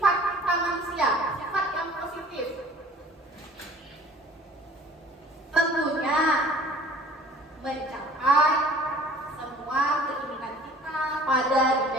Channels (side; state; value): both; normal; correlation 0.49